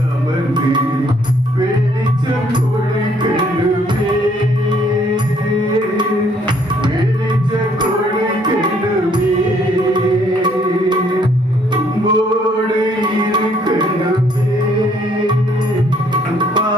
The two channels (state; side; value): normal; both; correlation 0.65